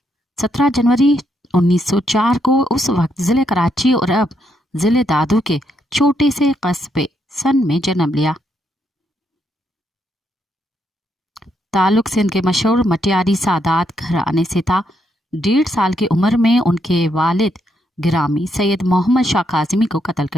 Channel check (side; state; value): both; normal; correlation 0.77